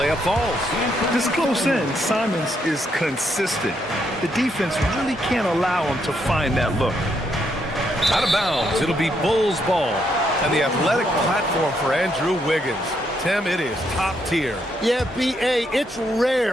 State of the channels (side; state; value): both; normal; correlation 0.76